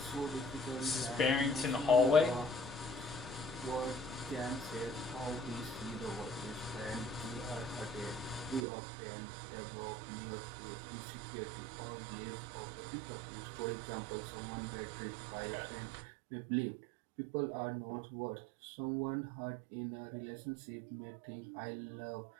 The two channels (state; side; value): drops out; left; at 8.7 s